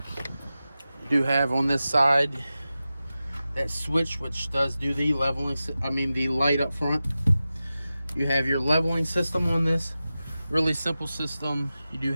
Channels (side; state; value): both; inverted; correlation -0.94